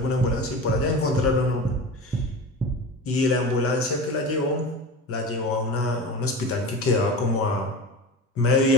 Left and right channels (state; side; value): normal; both; correlation 0.30